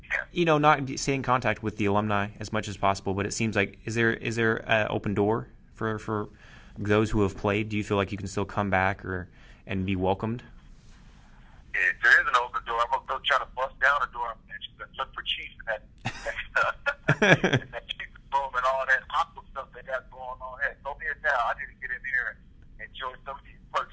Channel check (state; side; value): identical; both; correlation 1.00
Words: stay in contact with the alumni as much as possible. But it seems like, is there an open door for those who have played? Do you feel like you can still come back and be welcomed? Yeah, there is an open door. I'm gonna go try to bust down the door and look for Chiefs in that Chiefs room and all that aqua stuff they got going on. Hey, throw me a towel. I need to get in here and enjoy some of these